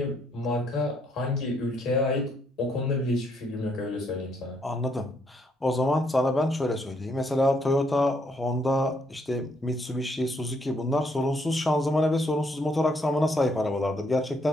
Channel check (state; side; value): normal; both; correlation 0.72